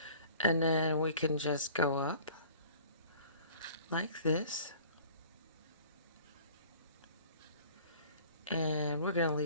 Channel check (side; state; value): both; inverted; correlation -0.49